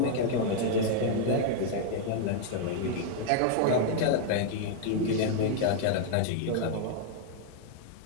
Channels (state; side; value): different; both; correlation 0.00